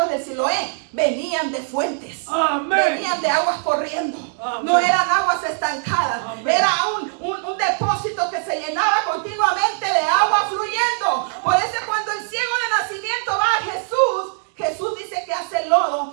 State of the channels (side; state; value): left; silent; 65 dB below the other